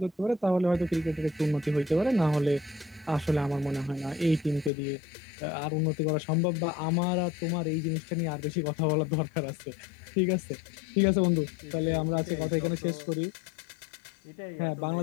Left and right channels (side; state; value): right; drops out; at 4.7 s